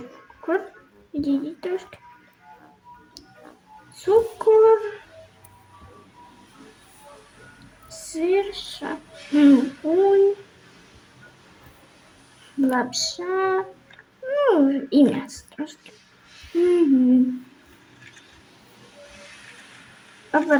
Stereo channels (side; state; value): both; identical; correlation 1.00